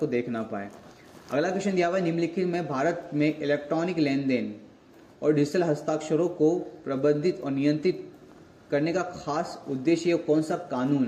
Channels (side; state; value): both; identical; correlation 1.00